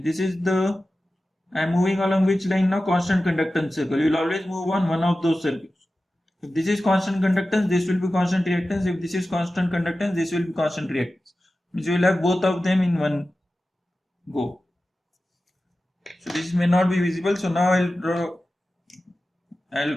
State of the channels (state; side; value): normal; both; correlation 0.94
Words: this is the, I am moving along which line now? Constant conductance circle. You will always move on one of those circles. If this is constant conductance, this will be constant reactance. If this is constant conductance, this will be constant reactance. Means you will have both of them in one go. So this may not be visible. So now I'll